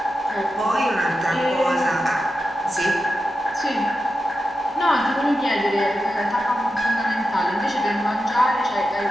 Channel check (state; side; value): normal; both; correlation 0.90